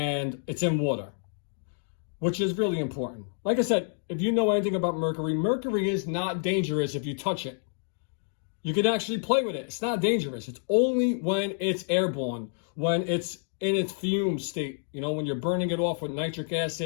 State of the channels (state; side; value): silent; right; digital silence